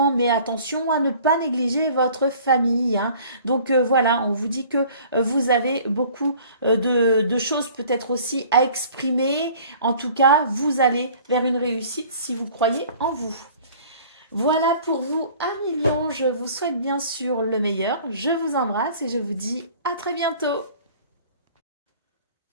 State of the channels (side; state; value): both; inverted; correlation -0.50